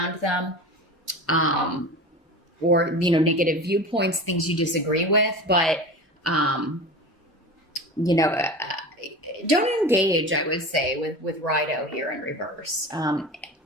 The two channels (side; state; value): both; normal; correlation 0.32